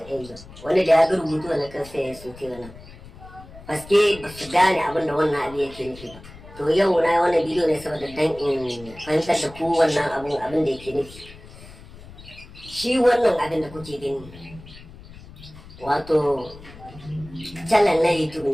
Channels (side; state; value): left; noise; rumble, 18 dB below the sound